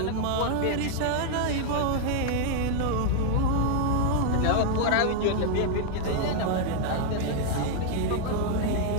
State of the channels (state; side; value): different; both; correlation 0.00